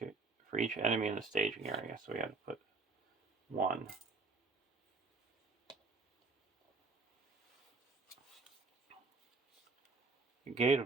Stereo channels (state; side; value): quieter; left; 4.0 dB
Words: for each enemy in the staging area. So we had to put 1. The Gate